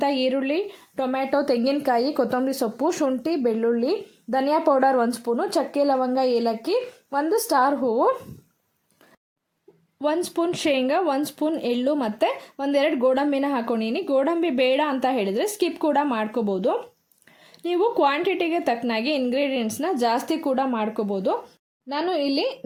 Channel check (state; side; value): identical; both; correlation 1.00